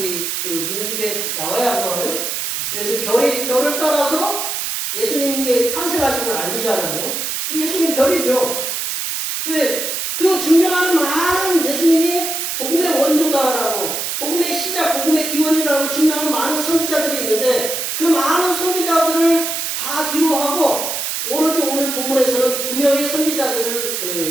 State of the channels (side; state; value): right; noise; hiss, 2 dB below the sound